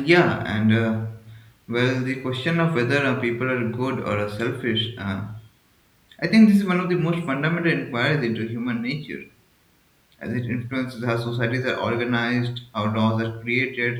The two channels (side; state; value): both; identical; correlation 1.00